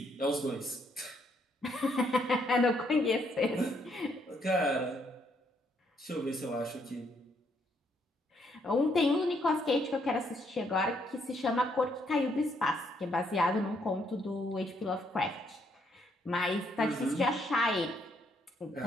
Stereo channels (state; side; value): normal; both; correlation 0.72